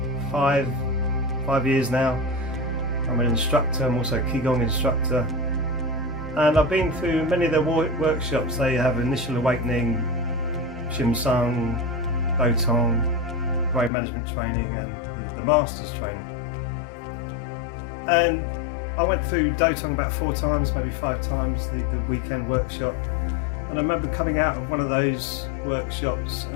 five years now. I'm an instructor, I'm also a Qigong instructor, and I've been through many of their workshops. They have Initial Awakening, Shimsung, Dotong, brain management training, and the Masters training. And I went through Dotong about 4 times, maybe 5 times, the weekend workshop. And I remember coming out of one of those workshops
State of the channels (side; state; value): right; drops out; at 13.9 s